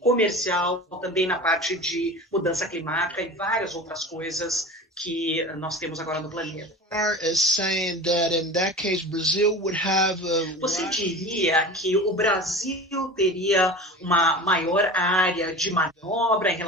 comercial, também na parte de mudança climática e várias outras coisas que nós temos agora no planeta. Você diria que o Brasil teria uma maior área de manobra em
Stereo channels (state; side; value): normal; both; correlation 0.34